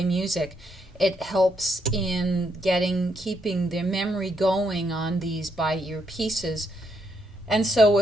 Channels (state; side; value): normal; both; correlation 0.77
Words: music. It helps in keeping their memory going on these by ear pieces. And so